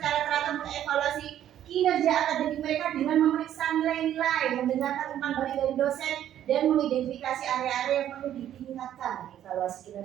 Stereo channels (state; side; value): quieter; left; 11.2 dB